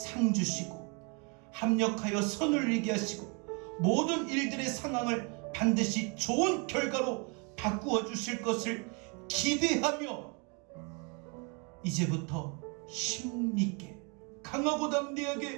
주시고 합력하여 선을 이루게 하시고 모든 일들의 상황을 반드시 좋은 결과로 바꾸어 주실 것을 기대하며 이제부터 힘있게, 강하고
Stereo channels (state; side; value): quieter; left; 33.3 dB